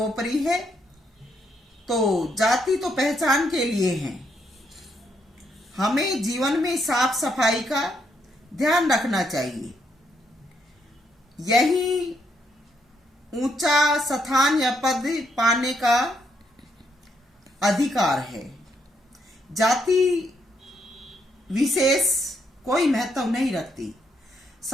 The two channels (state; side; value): normal; both; correlation 0.75